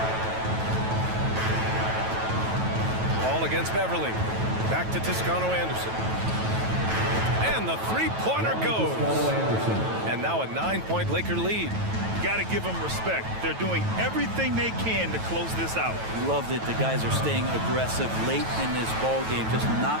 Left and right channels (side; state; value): left; late; 9.1 ms